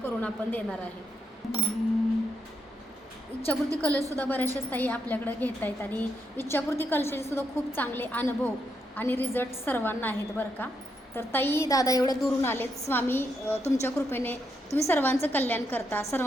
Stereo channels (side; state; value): both; normal; correlation 0.80